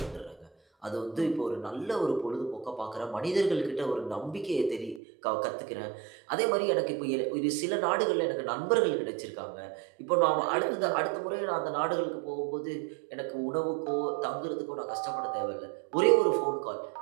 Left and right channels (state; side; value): drops out; left; at 5.0 s